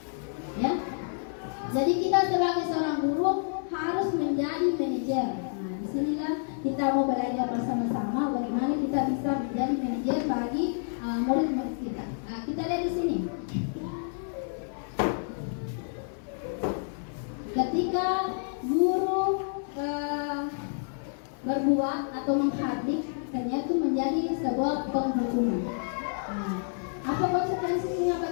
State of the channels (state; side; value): silent; right; 56 dB below the other